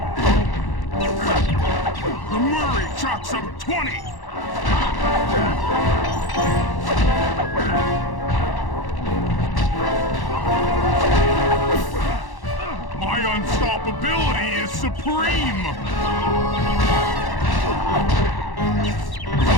The Murray chalks up 20! My unstoppability is supreme!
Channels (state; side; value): late; right; 1.1 ms